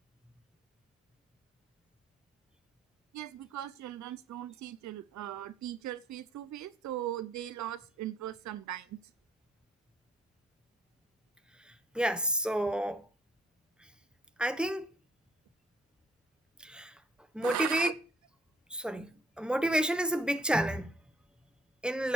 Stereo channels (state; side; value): normal; both; correlation 0.65